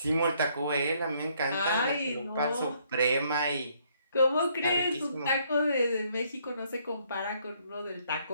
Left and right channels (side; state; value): both; inverted; correlation -0.68